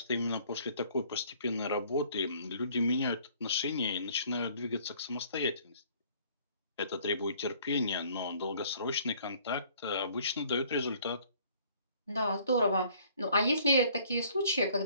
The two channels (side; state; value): both; inverted; correlation -0.58